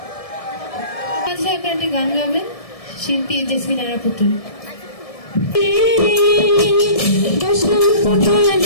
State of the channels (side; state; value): right; late; 1.7 ms